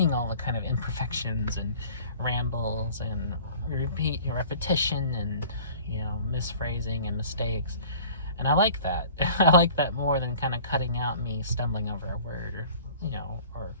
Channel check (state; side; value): inverted; both; correlation -0.46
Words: all the kind of imperfections and rambles and repetition and, you know, misphrasing and mistakes. And I like that. I like that more than kind of cutting out me stumbling over a word, or, you know, or